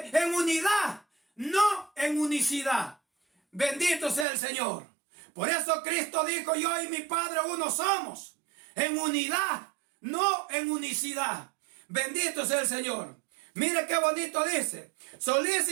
unidad, no en unicidad. Bendito sea el Señor. Por eso Cristo dijo: yo y mi Padre uno somos. En unidad, no en unicidad. Bendito sea el Señor. Mire qué bonito dice:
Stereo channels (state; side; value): drops out; left; at 4.2 s